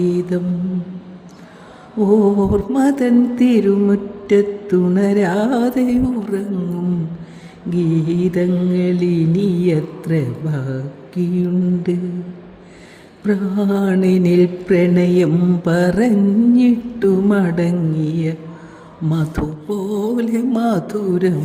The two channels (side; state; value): both; identical; correlation 1.00